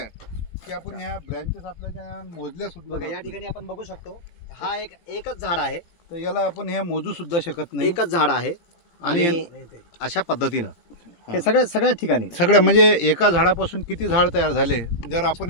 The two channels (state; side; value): late; right; 18 ms